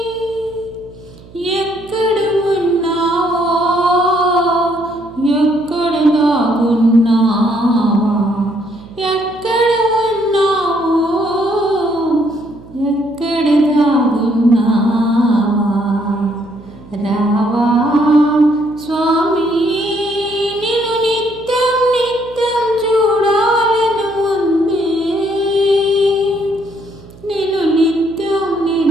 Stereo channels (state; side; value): noise; right; hum, 21 dB below the sound